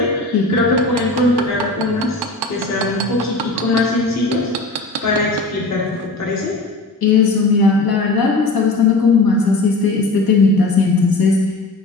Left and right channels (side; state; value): right; quieter; 3.1 dB